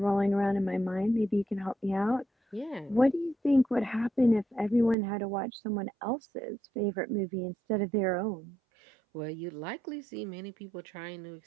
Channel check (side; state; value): left; drops out; at 5.0 s